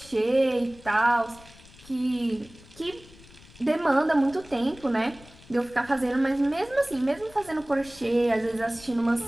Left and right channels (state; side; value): noise; left; rumble, 22 dB below the sound